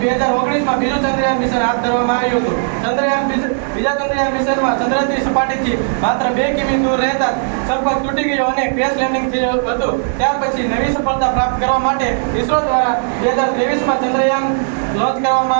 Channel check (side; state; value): left; silent; 68 dB below the other